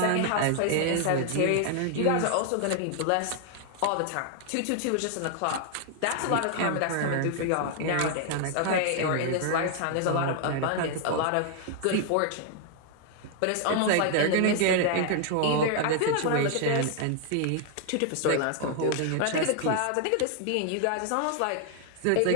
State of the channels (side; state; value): both; different; correlation 0.00